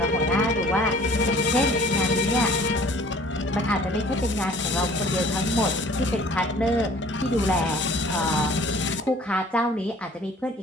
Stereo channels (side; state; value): both; normal; correlation 0.51